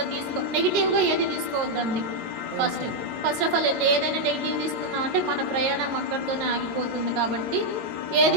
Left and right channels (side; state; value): left; late; 22 ms